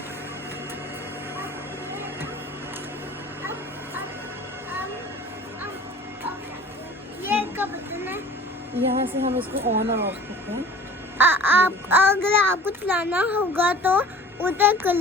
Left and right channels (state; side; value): normal; both; correlation 0.44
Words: ये का बटन है। यहाँ से हम इसको ऑन और ऑफ करते हैं। आप अगर आपको चलाना होगा तो उधर कर